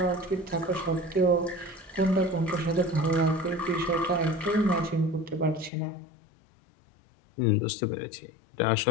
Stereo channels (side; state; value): right; drops out; at 5.7 s